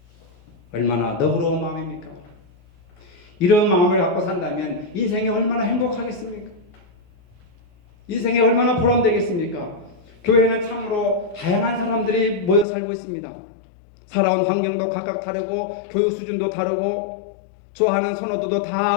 얼마나 너그러운 마음입니까? 이런 마음을 갖고 산다면 인생이 얼마나 행복하겠습니까? 인생이 얼마나 보람되겠습니까? 교회는 참으로 다양한 사람들이 모여 살고 있습니다. 살아온 환경도 각각 다르고 교육 수준도 다르고 좋아하는 선호도도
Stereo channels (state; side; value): drops out; right; at 12.7 s